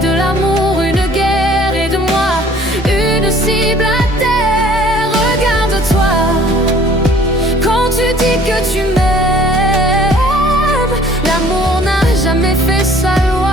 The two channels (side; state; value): both; normal; correlation 0.54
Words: de l'amour une guerre et de moi une cible à terre. Regarde-toi quand tu dis que tu m'aimes. L'amour n'a jamais fait sa